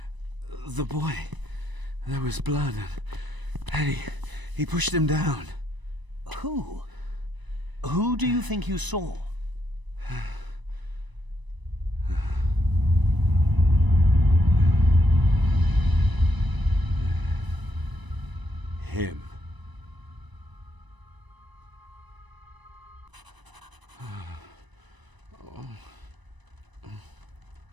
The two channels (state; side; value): late; left; 1.0 ms